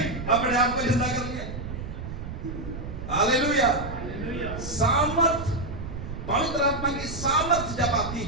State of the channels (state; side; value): noise; right; rumble, 8 dB below the sound